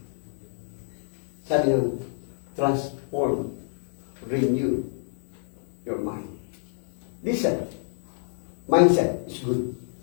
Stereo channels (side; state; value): right; silent; digital silence